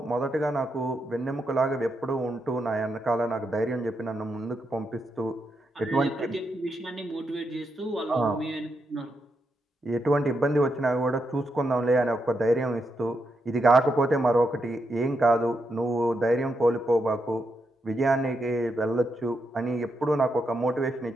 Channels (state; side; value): normal; both; correlation 0.83